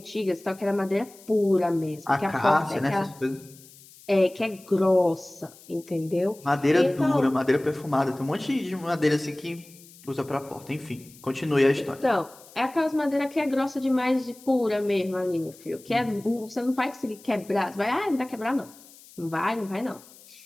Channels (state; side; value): noise; left; hiss, 23 dB below the sound